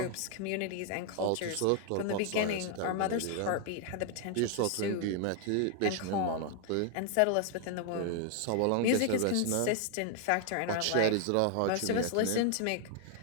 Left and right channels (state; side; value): different; both; correlation 0.00